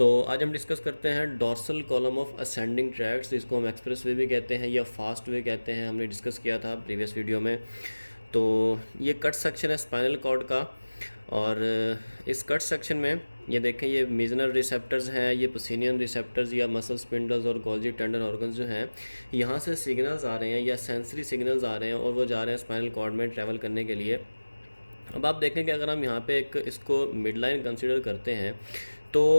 आज हम डिस्कस करते हैं dorsal column of ascending tracks, जिसको हम एक्सप्रेस वे भी कहते हैं या फास्ट वे कहते हैं। हमने डिस्कस किया था प्रीवियस वीडियो में। तो ये कट सेक्शन है स्पाइनल कॉर्ड का, और इस कट सेक्शन में ये देखें, ये मीजनल रिसेप्टर्स हैं, ये पसीनियन रिसेप्टर्स या मसल स्पिंडल्स और गोल्जी टेंडन ऑर्गन्स जो हैं, यहाँ से सिग्नल्स आ रहे हैं या सेंसरी सिग्नल्स आ रहे हैं और वो जा रहे हैं स्पाइनल कॉर्ड में ट्रैवल करने के लिए। अब आप देखें कि अगर हम यहाँ पे एक इसको मिड लाइन कंसिडर करते हैं तो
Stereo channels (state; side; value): inverted; both; correlation -1.00